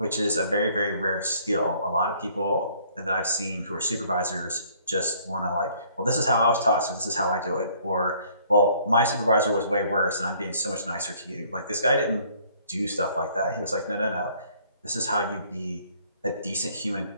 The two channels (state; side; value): inverted; both; correlation -0.60